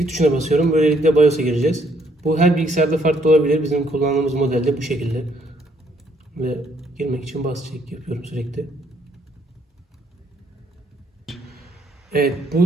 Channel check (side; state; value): both; normal; correlation 0.68